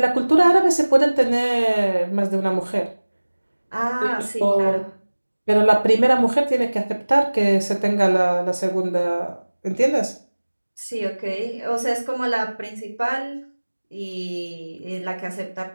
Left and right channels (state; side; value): inverted; both; correlation -1.00